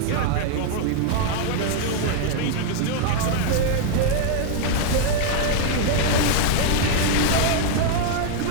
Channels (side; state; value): both; different; correlation 0.00